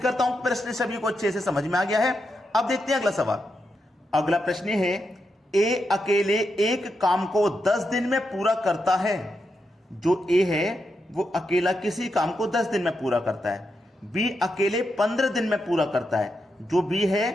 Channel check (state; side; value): normal; both; correlation 0.85